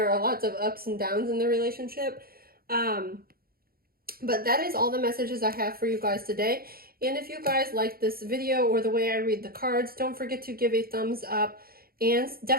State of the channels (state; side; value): late; left; 0.43 ms